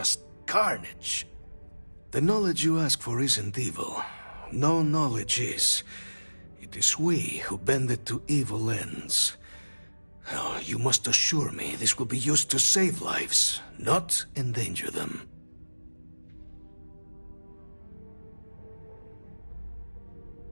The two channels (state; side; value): inverted; both; correlation -1.00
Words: carnage. The knowledge you ask for isn't evil. No knowledge is. It is we who bend it to evil ends. Oh, you must assure me this will be used to save lives, not endanger them.